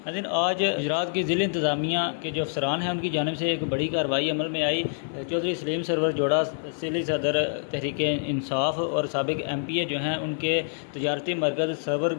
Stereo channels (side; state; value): right; silent; digital silence